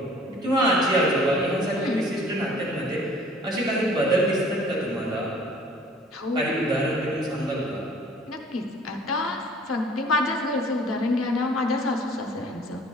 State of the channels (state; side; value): normal; both; correlation 0.52